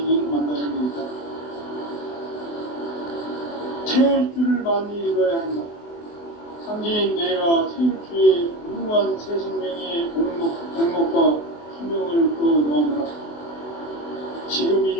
만나는 데 있다. 태울 줄을 많이 읽어야 한다. 상제인 내가 태울주의 무궁한 새 생명의 공목과 수명을 끌어놓아노라. 지금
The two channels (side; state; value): right; late; 24 ms